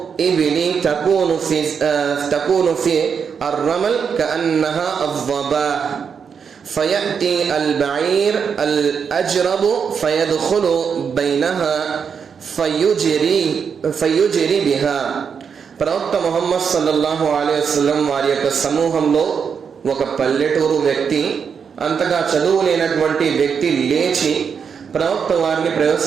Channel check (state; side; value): quieter; left; 6.6 dB